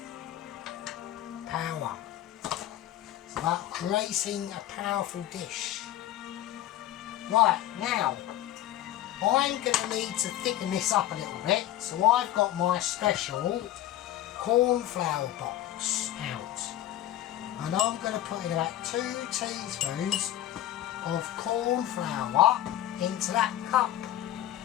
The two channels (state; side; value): quieter; right; 13.2 dB